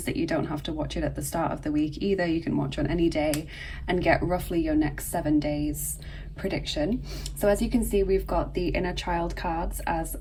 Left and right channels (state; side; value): identical; both; correlation 1.00